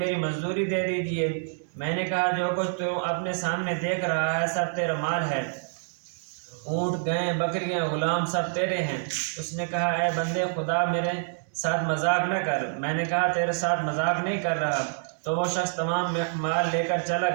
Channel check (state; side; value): silent; left; digital silence